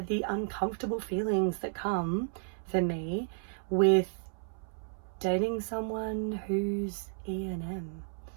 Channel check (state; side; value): silent; left; 56 dB below the other